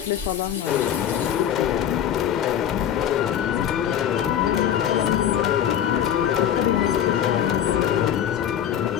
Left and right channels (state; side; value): quieter; right; 9.9 dB